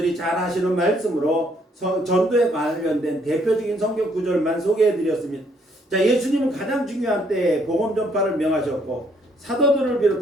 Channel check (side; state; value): both; normal; correlation 0.68